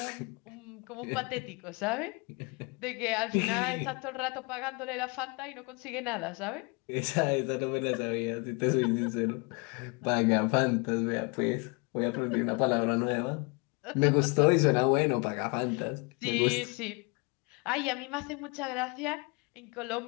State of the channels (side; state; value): right; quieter; 30.6 dB